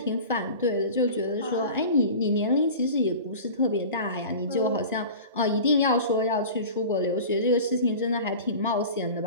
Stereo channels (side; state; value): both; inverted; correlation -0.37